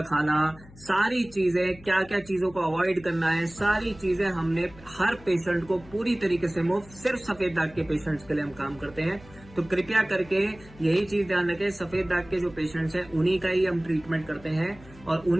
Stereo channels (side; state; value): left; noise; hum, 21 dB below the sound